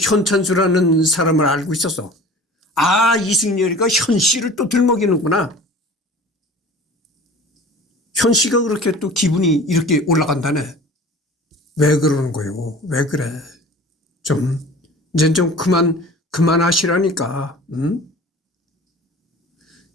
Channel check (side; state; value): both; normal; correlation 0.42